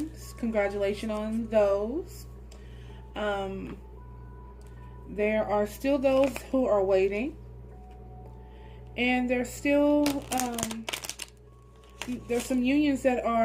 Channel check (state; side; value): identical; both; correlation 1.00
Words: Congratulations on those. There are still those who are waiting. And there's still, there's some unions that